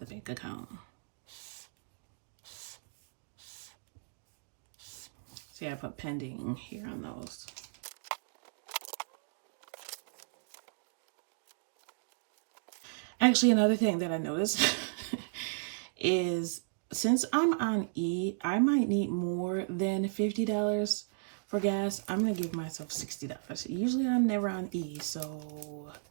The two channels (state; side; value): silent; left; digital silence